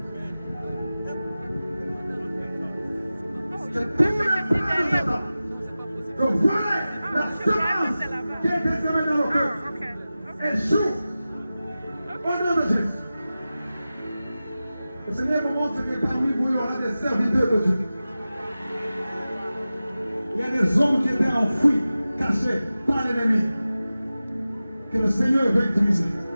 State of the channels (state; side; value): inverted; both; correlation -0.95